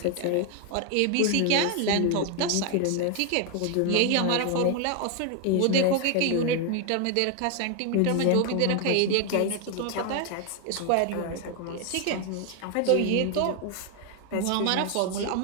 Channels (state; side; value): different; both; correlation 0.00